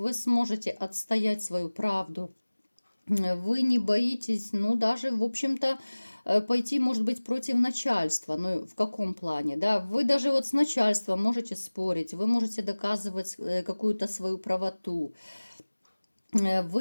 сможете отстоять свою правду, вы не боитесь, ну, даже, в общем-то, пойти, может быть, против начальства, ну, в каком плане, да, вы даже вот с начальством можете спорить, вы можете доказывать какую-то свою правоту.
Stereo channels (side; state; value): both; inverted; correlation -1.00